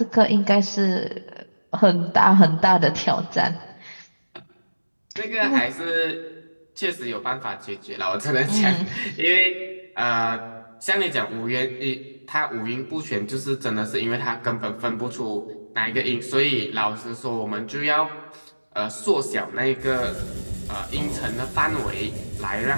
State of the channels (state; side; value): inverted; both; correlation -1.00